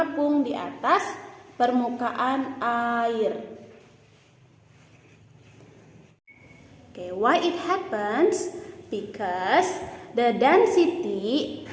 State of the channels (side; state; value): both; identical; correlation 1.00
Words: di atas permukaan air. Okay, why it happens? Because the density